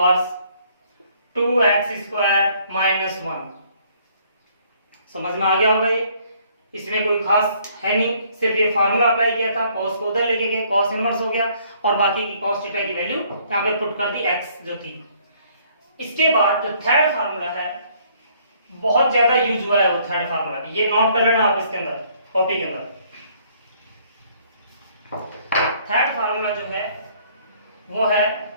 2x square minus 1। समझ में आ गया होगा ये, इसमें कोई खास है नहीं, सिर्फ ये फार्मूला अप्लाई किया था, cos को उधर लेके गए, cos इनवर्स हो गया, और बाकी की cos थीटा की वैल्यू यहाँ पे पुट कर दी x जो थी। इसके बाद जो थर्ड फार्मूला है बहुत ज्यादा यूज हुआ है वो थर्ड फार्मूला, ये नोट कर लेना आप इसके अंदर कॉपी के अंदर। थर्ड फार्मूला जो है वो है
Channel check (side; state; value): both; inverted; correlation -0.63